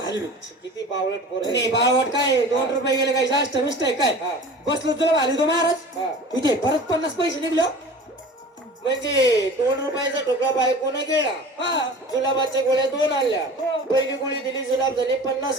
हलवी. किती बावळट पोर आहे. नाही बाळवट काय 2 रुपये गेले काय जास्त मिस्ट आहे काय? हा. बसलो जुलाब हलवी तो महाराज. हा. इथे परत 50 पैसे निघले हो. म्हणजे 2 रुपयाचा ठोकळा बायकोने गिळला, हा. जुलाबाच्या गोळ्या 2 आणल्या. हो. पहिली गोळी दिली, जुलाब झाले, 50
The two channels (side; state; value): both; normal; correlation 0.39